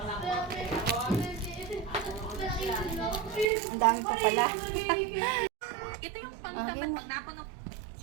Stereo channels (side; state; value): left; drops out; at 3.5 s